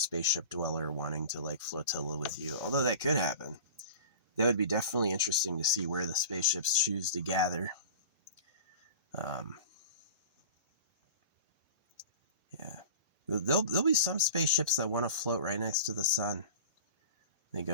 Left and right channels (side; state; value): both; inverted; correlation -0.37